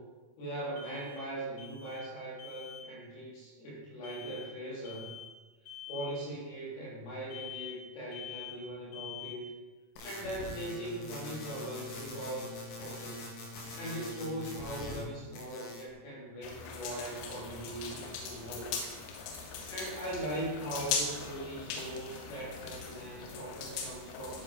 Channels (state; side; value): late; right; 27 ms